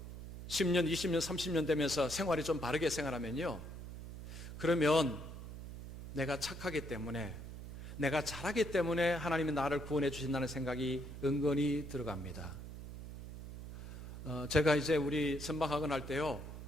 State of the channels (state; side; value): noise; right; hum, 10 dB below the sound